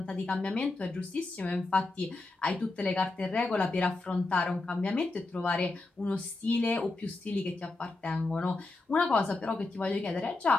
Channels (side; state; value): right; quieter; 3.2 dB